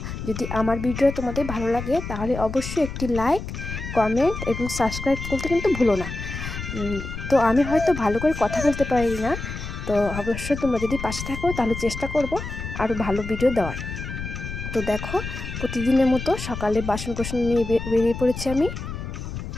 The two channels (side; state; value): left; noise; rumble, 7 dB below the sound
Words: যদি আমার ভিডিও তোমাদের ভালো লাগে তাহলে অবশ্যই একটি লাইক, কমেন্ট এবং সাবস্ক্রাইব করতে কিন্তু ভুলো না। তো আমি হয়তো ভালো করে কথা বলতে পারি না, তো অবশ্যই তোমরা যদি পাশে থাকো তাহলে চেষ্টা করব আরও ভালো ভিডিও দেওয়ার। তো দেখো, প্রতিদিনের মতো সকালে বাসন কোসন নিয়ে বেরিয়ে পড়েছি আমি।